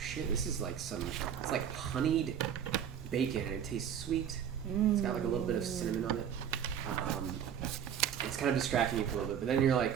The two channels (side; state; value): left; quieter; 8.7 dB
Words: this is like it's like honeyed bacon and it tastes sweet. It's got like a little bit of cinnamon on it. It's kind of distracting you for a little bit, but then you're like,